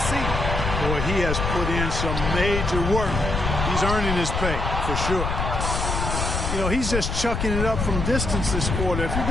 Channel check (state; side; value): noise; left; rumble, 2 dB below the sound